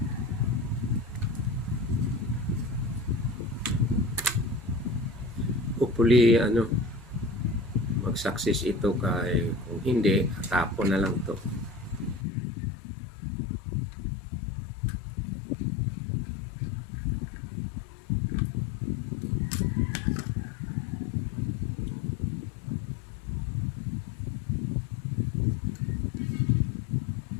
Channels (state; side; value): drops out; right; at 12.2 s